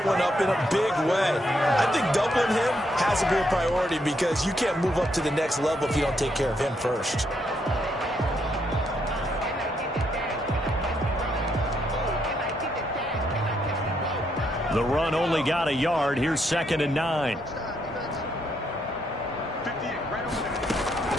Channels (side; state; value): both; normal; correlation 0.76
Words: one up in a big way. I think doubling him has to be a priority because you can't move up to the next level if you don't take care of him first. The run only got a yard. Here's 2nd and 9.